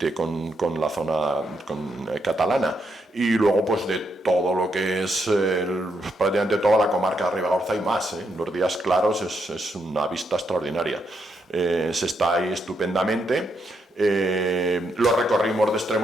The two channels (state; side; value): normal; both; correlation 0.79